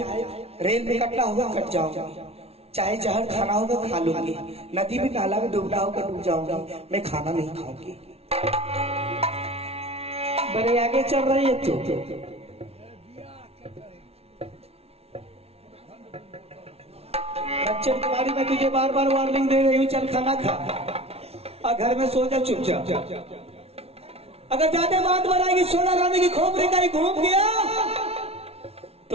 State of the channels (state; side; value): late; left; 0.30 ms